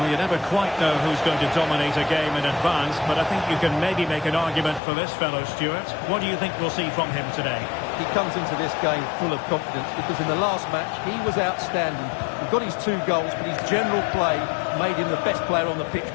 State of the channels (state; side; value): drops out; right; at 4.8 s